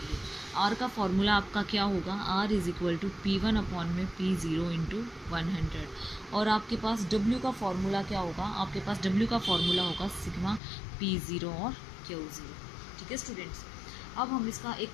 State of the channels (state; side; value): drops out; right; at 10.6 s